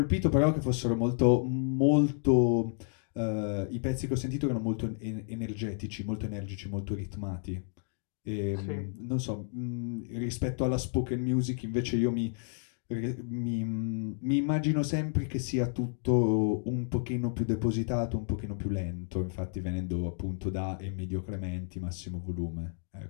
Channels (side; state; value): right; silent; 57 dB below the other